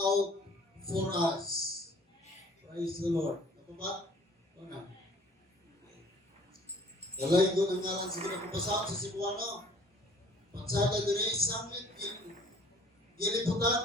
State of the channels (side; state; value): both; normal; correlation 0.53